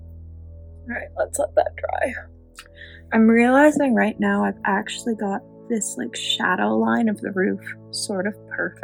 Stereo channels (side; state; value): both; identical; correlation 1.00